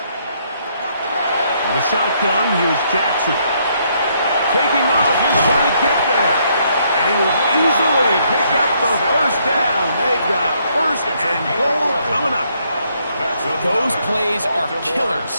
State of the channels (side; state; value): both; inverted; correlation -0.71